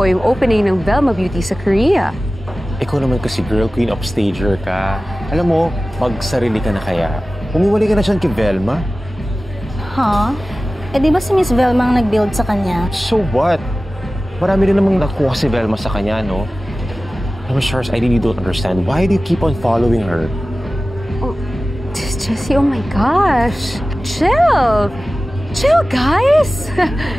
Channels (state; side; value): normal; both; correlation 0.96